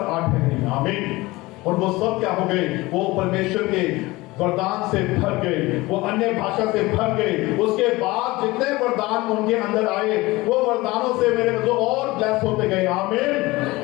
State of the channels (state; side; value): quieter; right; 20.8 dB